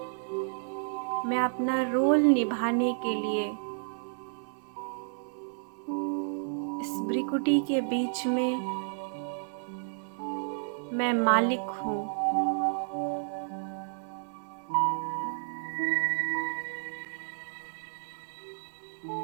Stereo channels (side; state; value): left; silent; 57 dB below the other